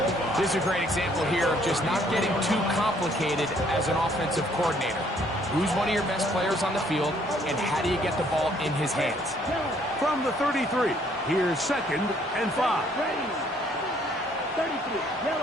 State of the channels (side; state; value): both; normal; correlation 0.64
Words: This is a great example here of just not getting too complicated as an offensive coordinator. Who's one of your best players on the field, and how do you get the ball in his hands? From the 33, here's 2nd and 5. Ready. 33,